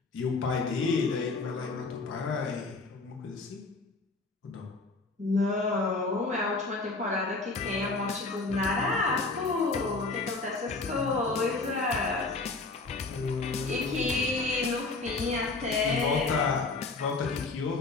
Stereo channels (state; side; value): quieter; right; 3.6 dB